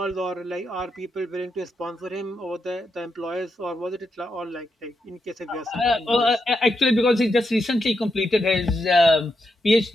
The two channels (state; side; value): normal; both; correlation 0.84